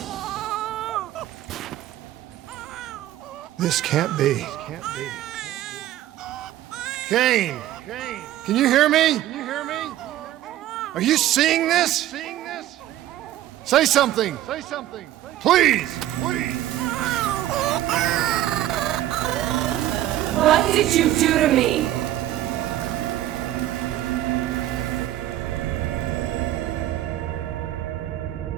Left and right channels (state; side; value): quieter; left; 13.4 dB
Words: This can't be. Kane! Can you hear me? Are you seeing this? Say something! Please! What did you do to me?